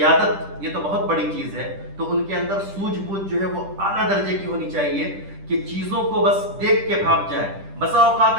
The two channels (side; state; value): left; late; 10 ms